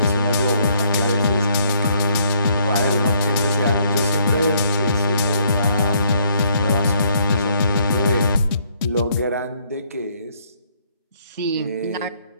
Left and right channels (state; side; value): inverted; both; correlation -0.67